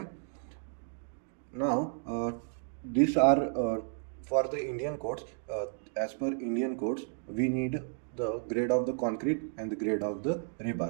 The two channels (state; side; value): silent; left; 56 dB below the other